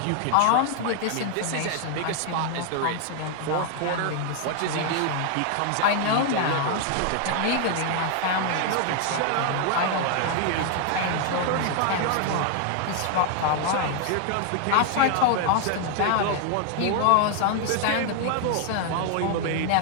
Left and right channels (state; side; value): different; both; correlation 0.00